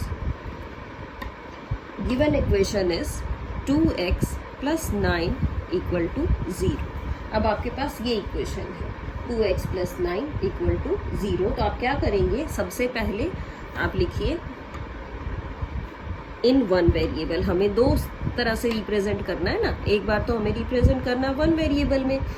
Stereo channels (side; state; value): both; identical; correlation 1.00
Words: इज 2x + 9 = 0। अब आपके पास ये इक्वेशन है 2x + 9 = 0। तो आप क्या करेंगे, सबसे पहले आप लिखिए इन 1 वेरिएबल। हमें दो तरह से रिप्रेजेंट करना है ना, एक बार तो हमें रिप्रेजेंट करना 1 वेरिएबल में